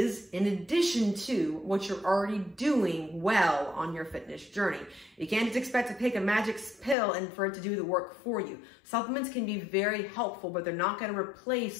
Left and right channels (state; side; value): drops out; right; at 7.0 s